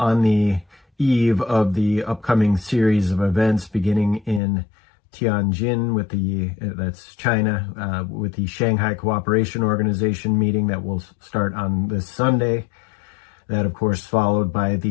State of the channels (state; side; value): drops out; right; at 4.4 s